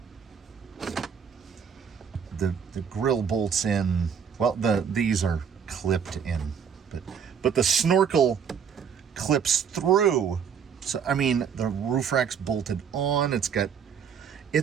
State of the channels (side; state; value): left; quieter; 7.2 dB